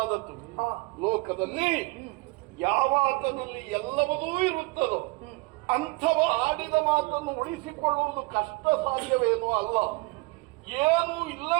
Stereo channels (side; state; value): left; quieter; 25.0 dB